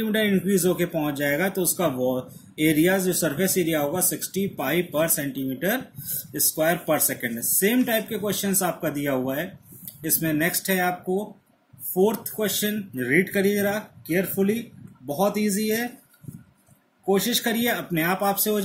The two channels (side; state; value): both; identical; correlation 1.00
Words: इंक्रीज होके पहुंच जाएगा, तो उसका एरिया जो सरफेस एरिया होगा 60 पाई पर सेंटीमीटर स्क्वायर पर सेकेंड। सेम टाइप के क्वेश्चंस आपका दिया हुआ है इसमें। नेक्स्ट है आपको फोर्थ क्वेश्चन, रीड करिए जरा केयरफुली, बहुत इजी है, कोशिश करिए अपने आप आपसे हो